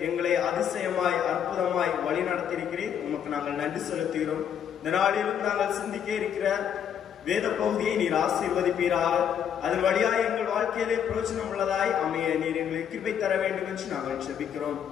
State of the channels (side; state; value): right; quieter; 8.7 dB